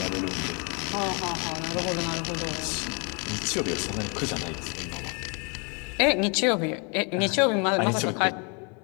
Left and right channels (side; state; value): right; quieter; 34.5 dB